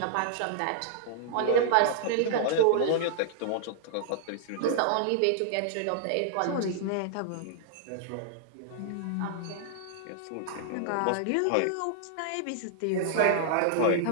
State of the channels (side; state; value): both; different; correlation -0.01